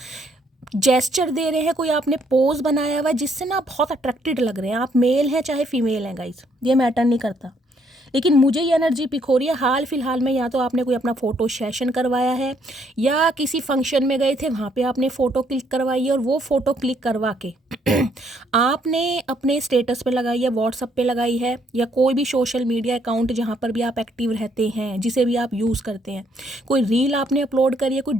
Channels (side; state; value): both; normal; correlation 0.69